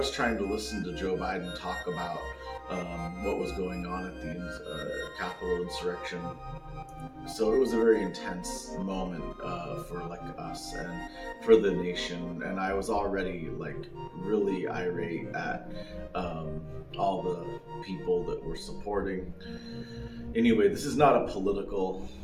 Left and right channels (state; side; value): identical; both; correlation 1.00